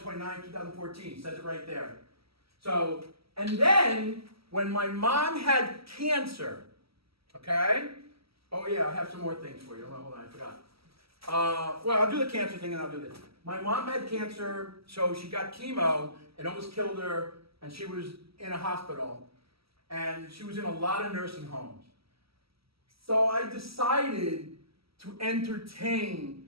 2014, says it right there. So, and then when my mom had cancer, okay? Oh yeah, I have some more things for you. Hold on, I forgot. Well, I'll do the cancer thing and I'll do this. My mom had cancer, so she got chemo and almost killed her, and she was in a hospital, and she was in a lot of nursing homes. So I decided to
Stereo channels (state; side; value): late; left; 0.76 ms